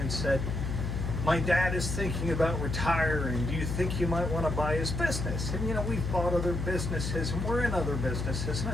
said, "My dad is thinking about retiring. Do you think you might want to buy his business?" And you know, we've bought other businesses and we're in other businesses. And I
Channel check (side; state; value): left; noise; hum, 2 dB below the sound